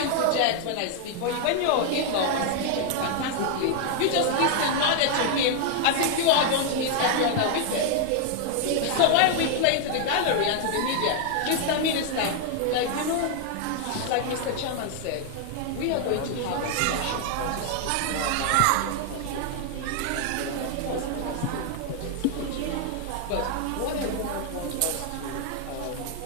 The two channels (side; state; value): both; different; correlation 0.00